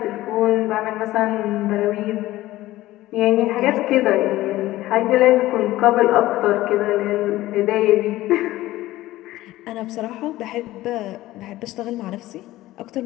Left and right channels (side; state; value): right; quieter; 16.4 dB